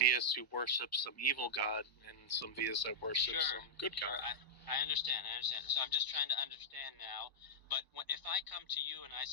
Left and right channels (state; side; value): late; right; 1.0 ms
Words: who worship some evil god and some theists that worship some good god. I understand. So I'm just trying to understand now. But if I come to you and I